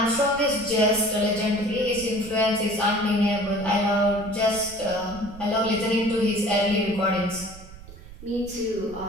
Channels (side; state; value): right; noise; rumble, 17 dB below the sound